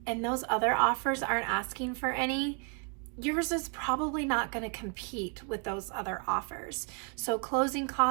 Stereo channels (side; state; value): left; quieter; 39.0 dB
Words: and those other offers aren't asking for any, yours is probably not going to compete with those other offers. So closing